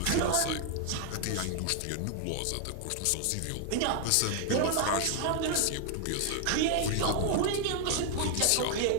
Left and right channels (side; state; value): both; different; correlation 0.00